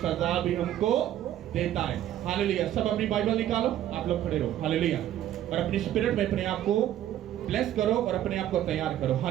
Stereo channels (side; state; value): left; quieter; 12.1 dB